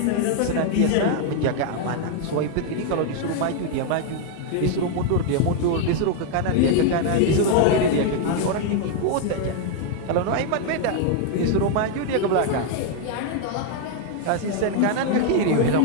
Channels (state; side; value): different; both; correlation 0.00